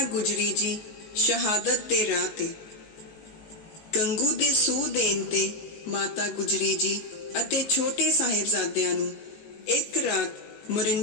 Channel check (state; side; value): late; right; 19 ms